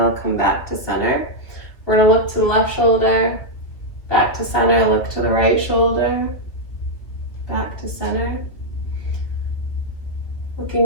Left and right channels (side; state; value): right; late; 2.9 ms